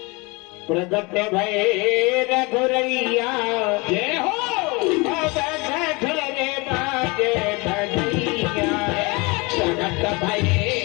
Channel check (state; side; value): quieter; right; 27.0 dB